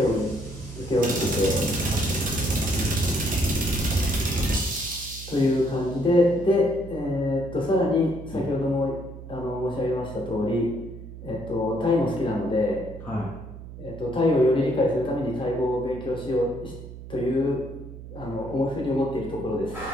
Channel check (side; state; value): right; noise; hum, 13 dB below the sound